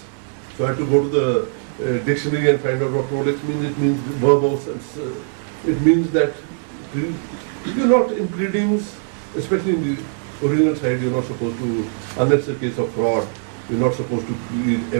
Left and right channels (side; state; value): left; silent; digital silence